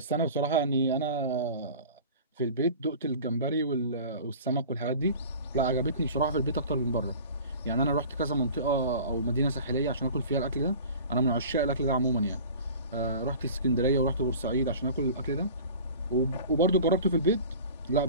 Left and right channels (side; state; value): both; inverted; correlation -0.40